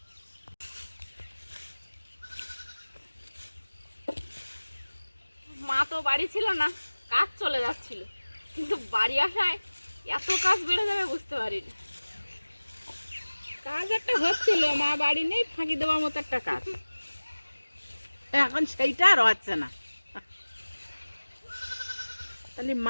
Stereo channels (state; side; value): inverted; both; correlation -1.00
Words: মা তো বাড়ি ছিল না, কাজ চলে যাচ্ছিল, কিন্তু বাড়ি আসায় এত কাজ বেড়ে যাবে বুঝতে পারিনি। কাজ একটা হচ্ছিল, মা বাড়ি নেই, ফাঁকি দেওয়ার মতো একটা কাজ, এখন সেইটা আর হচ্ছে না। তাহলে